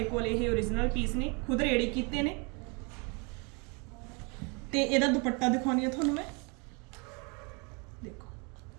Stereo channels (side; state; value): left; quieter; 31.8 dB